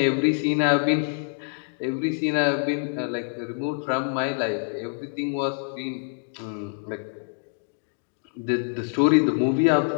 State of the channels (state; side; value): silent; right; 61 dB below the other